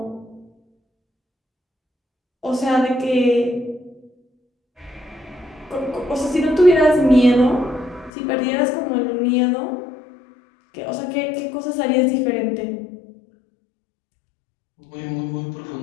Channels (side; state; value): right; drops out; at 8.1 s